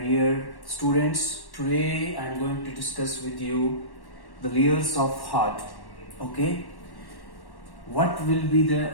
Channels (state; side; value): late; right; 1.1 ms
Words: students. Today I am going to discuss with you the layers of heart. Okay, what will be the